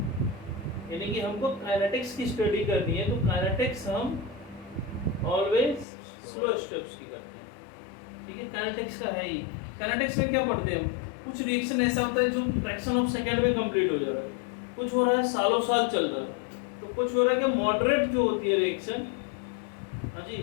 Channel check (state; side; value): drops out; right; at 5.9 s